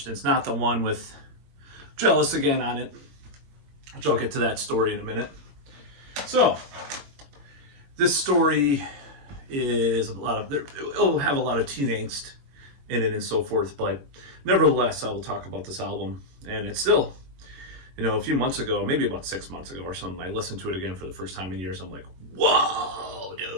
It's not the one with Jealous Again on it, which I'll get to that story in a minute. So, this story is it'll have a lot of teen angst in it and so forth, but nevertheless, I will talk about this album. And it's still, a few months ago, maybe about 6 months ago or something, I listened to it again for the first time in years. I'm like, whoa,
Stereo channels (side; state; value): left; late; 22 ms